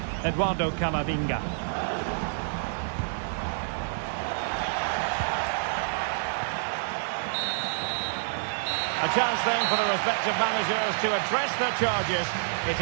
Eduardo Camavinga. A chance then for the respective managers to address their charges. It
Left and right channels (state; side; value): silent; left; digital silence